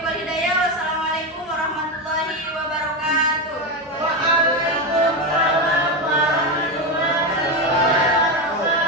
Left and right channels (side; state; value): both; normal; correlation 0.12